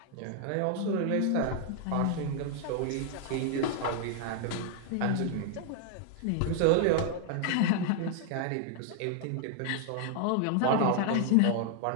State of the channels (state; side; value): different; both; correlation 0.00